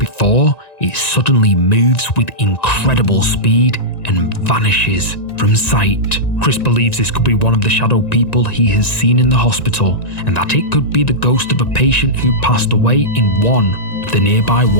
it suddenly moves with incredible speed and vanishes from sight. Chris believes this could be one of the shadow people he has seen in the hospital, and that it could be the ghost of a patient who passed away in one of the nearby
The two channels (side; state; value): right; late; 1.9 ms